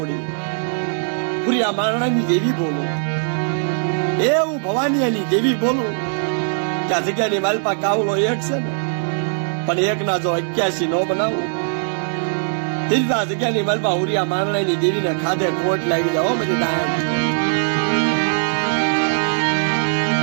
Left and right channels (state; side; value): silent; left; 65 dB below the other